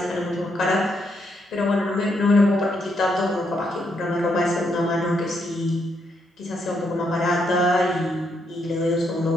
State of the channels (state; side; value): normal; both; correlation 0.77